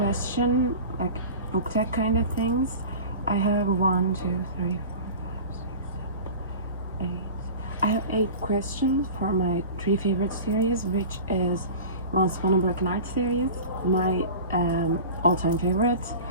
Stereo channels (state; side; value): inverted; both; correlation -0.35